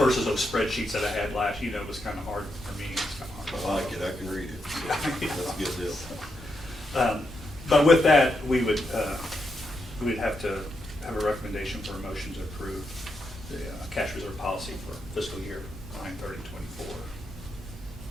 those spreadsheets that I had last, it was kind of hard for me. It's kind of hard. I like it, I can read it. That's a good deal. But with that, we'd have to have a recommendation for a motion to approve the cash reserve policy for fiscal year 9/30/24.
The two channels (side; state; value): both; normal; correlation 0.83